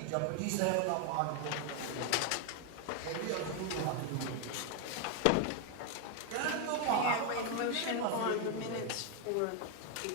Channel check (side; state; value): both; different; correlation 0.01